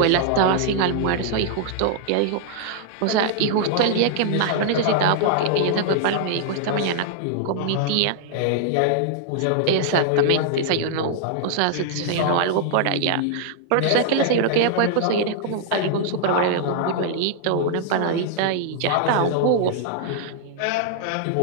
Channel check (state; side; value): different; both; correlation -0.01